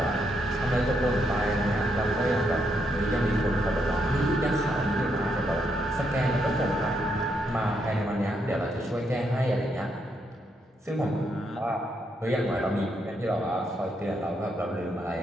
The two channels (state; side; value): normal; both; correlation 0.78